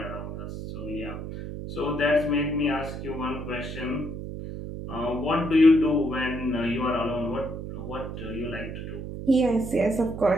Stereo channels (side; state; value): right; noise; hum, 7 dB below the sound